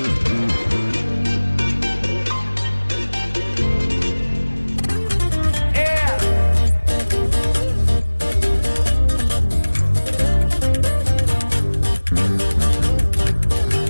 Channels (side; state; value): both; inverted; correlation -1.00